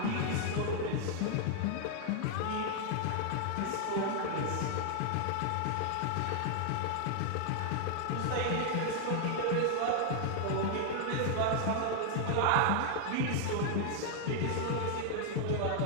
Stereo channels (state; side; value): different; both; correlation 0.00